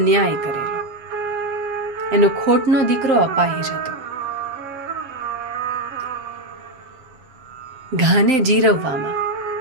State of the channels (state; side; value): late; left; 7.3 ms